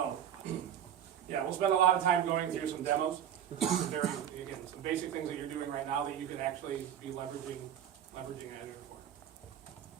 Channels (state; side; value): quieter; left; 9.8 dB